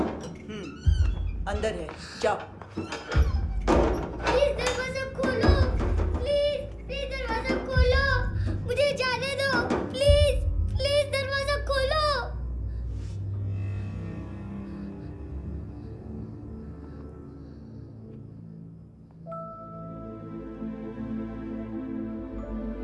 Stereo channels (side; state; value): both; identical; correlation 1.00